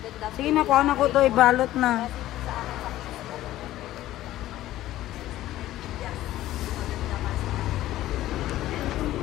Sige na, kuha na ko to, ibalot na.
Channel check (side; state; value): right; quieter; 14.6 dB